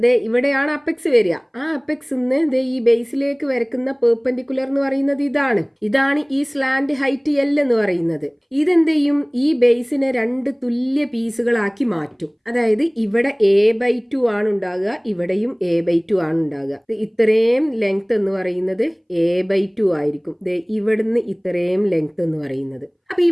ഇവിടെയാണ് അപ്പെക്സ് വരിക. ആ അപ്പെക്സ് ഈ ബേസിലേക്ക് വരക്കുന്ന പെർപെൻഡിക്കുലർ എന്ന് പറയുന്നത് ഇതാണ് ഈ സ്ലാന്റ് ഹൈറ്റ് L എന്ന് പറയുന്നത്. ഇതെന്ത് ചെയ്യും? ഈ ബേസിനെ 2 തുല്യ പീസുകളാക്കി മാറ്റും. അതായത് ഇവിടെ A/2 ആണ് ഉണ്ടാകുക, ഇവിടെയും A/2 ആണ് ഉണ്ടാകുക. ഇത്രയും ലെങ്ത് എന്ന് പറയുന്നത് A/2 ആയിരിക്കും. ഇവിടുന്ന് ഇത്രയും ലെങ്ത് എന്ന് പറയുന്നത്. അപ്പൊ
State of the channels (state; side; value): identical; both; correlation 1.00